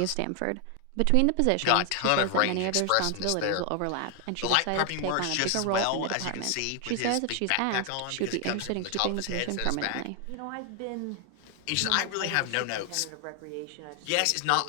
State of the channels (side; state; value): both; different; correlation 0.00